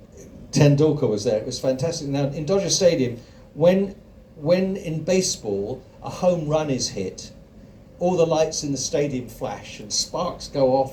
Tendulkar was there. It was fantastic. Now in Dodger Stadium, when in baseball a home run is hit, all the lights in the stadium flash and sparks go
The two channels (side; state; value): both; identical; correlation 1.00